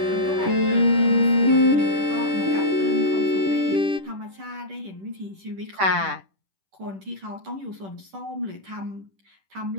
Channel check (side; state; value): left; late; 10 ms